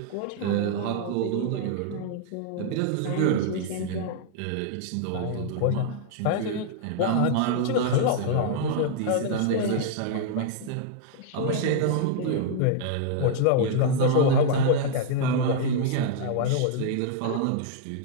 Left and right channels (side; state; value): both; different; correlation -0.01